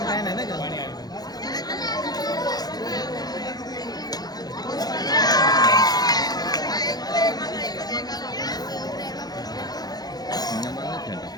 काय नाही ना का.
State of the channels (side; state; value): right; late; 0.19 ms